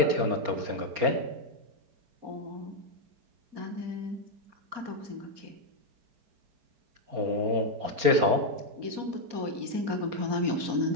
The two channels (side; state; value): left; late; 4.3 ms